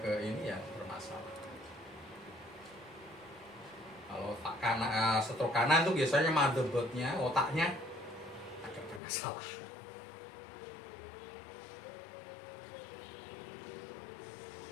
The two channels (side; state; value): right; drops out; at 9.0 s